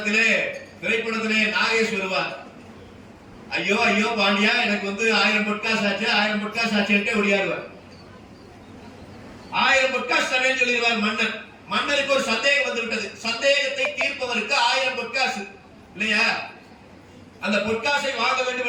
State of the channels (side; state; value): both; identical; correlation 1.00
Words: திரைப்படத்திலே நாகேஷ் வருவார். ஐயோ ஐயோ பாண்டியா, எனக்கு 1000 பொட்காசு ஆச்சு, 1000 பொட்காசு ஆச்சு ஒடியாடுவார். 1000 பொட்காசு தரேன்னு சொல்லிடுவார் மன்னர். மன்னருக்கு ஒரு சந்தேகம் வந்து விட்டது. சந்தேகத்தை தீர்ப்பவருக்கு 1000 பொட்காசு இல்லையா? அந்த பொட்காசை வாங்க வேண்டும்